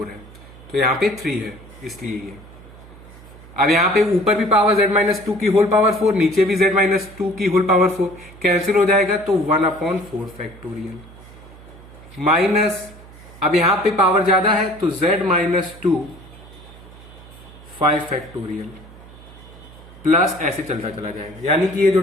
है, तो यहां पे 3 है इसलिए ये। अब यहां पे ऊपर भी पावर z-2 की होल पावर 4, नीचे भी z-2 की होल पावर 4, कैंसिल हो जाएगा तो 1/4 फैक्टोरियल माइनस, अब यहां पे पावर ज्यादा है तो z-2 5 फैक्टोरियल प्लस ऐसे चलता चला जाएगा, यानी कि ये जो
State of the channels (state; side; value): noise; right; hum, 20 dB below the sound